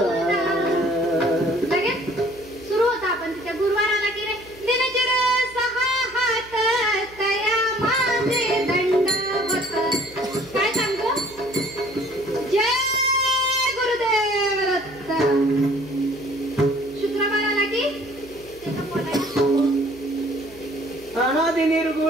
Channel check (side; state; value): right; noise; hum, 23 dB below the sound